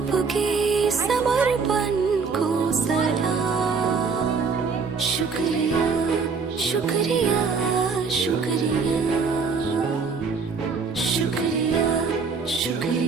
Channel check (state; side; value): quieter; left; 5.1 dB